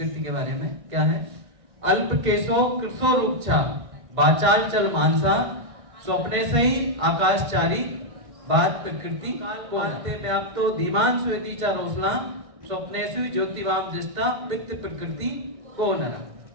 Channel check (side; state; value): left; late; 1.6 ms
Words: के बारे में क्या है। अल्प केशो कृशो रूपछा बाचाल चल मानसा स्वप्ने से ही आकाशचारी बात प्रकृति को आते व्याप्तो धीमान स्वेदी चा रोसना स्वप्नेषु ज्योतिवाम दृष्टा वित्त प्रकृति को नरा।